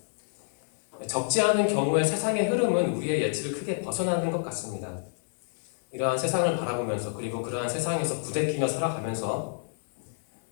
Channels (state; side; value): silent; right; digital silence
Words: 적지 않은 경우에 세상의 흐름은 우리의 예측을 크게 벗어나는 것 같습니다. 이러한 세상을 바라보면서 그리고 그러한 세상에서 부대끼며 살아가면서